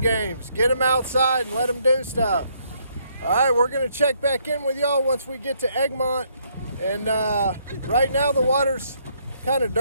Get them outside and let them do stuff. All right, we're gonna check back in with y'all once we get to Egmont. And right now the water's kind of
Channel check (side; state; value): both; inverted; correlation -0.70